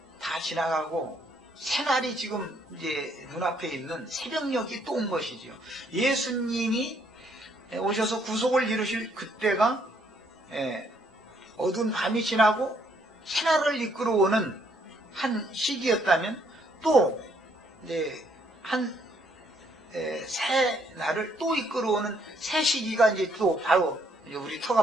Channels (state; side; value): normal; both; correlation 0.69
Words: 다 지나가고 새날이 지금 이제 눈앞에 있는 새벽녘이 또 온 것이죠. 예수님이 오셔서 구속을 이루실 그때가 어두운 밤이 지나고 새날을 이끌어오는 한 시기였다면 또 이제 새 날을 또 이끌어오는 새 시기가 이제 또 바로 이제 우리 턱